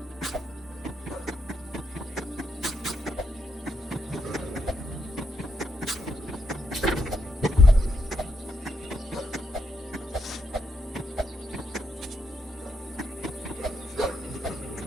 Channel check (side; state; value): both; normal; correlation 0.80